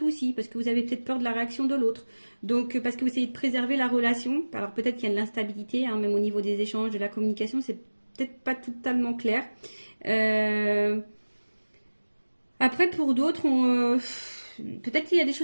aussi, parce que vous avez peut-être peur de la réaction de l'autre. Donc, parce que vous essayez de préserver la relation. Alors, peut-être qu'il y a de l'instabilité, hein, même au niveau des échanges, de la communication, c'est peut-être pas totalement clair. Euh, Après, pour d'autres, peut-être qu'il y a des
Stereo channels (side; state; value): both; inverted; correlation -1.00